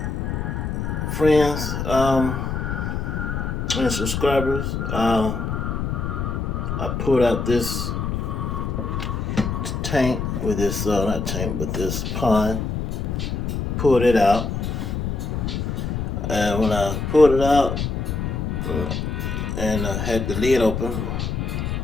friends, and subscribers, I pulled out this tank with this, not tank, but this pond. Pulled it out, and when I pulled it out and had the lid open,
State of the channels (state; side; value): noise; left; rumble, 2 dB below the sound